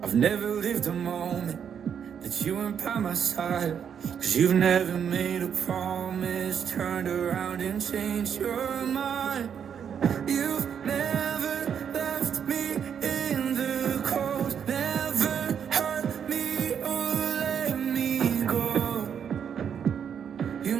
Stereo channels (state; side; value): quieter; left; 7.9 dB